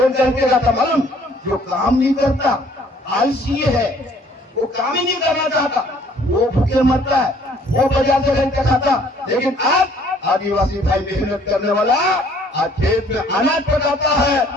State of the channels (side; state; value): both; normal; correlation 0.59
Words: खरीद के खाता मालूम? जो काम नहीं करता, आलसी है, वो काम ही नहीं करना चाहता, वो भूखे मरता है, वो बाजार से खरीद के खाता। लेकिन आज आदिवासी भाई मेहनत करने वाला आज खेत में अनाज पकाता